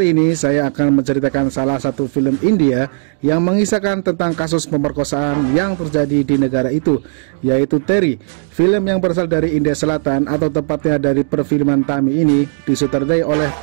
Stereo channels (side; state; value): left; silent; digital silence